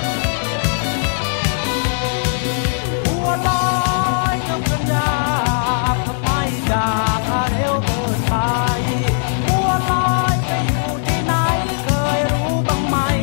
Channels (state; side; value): silent; right; digital silence